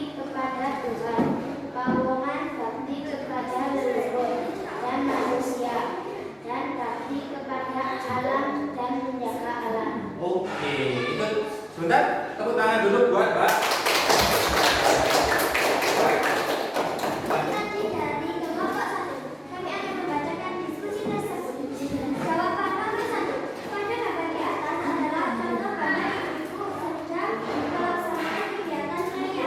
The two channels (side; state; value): both; identical; correlation 1.00